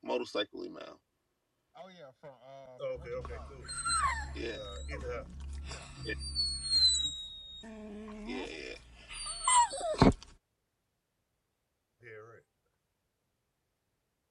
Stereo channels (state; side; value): identical; both; correlation 1.00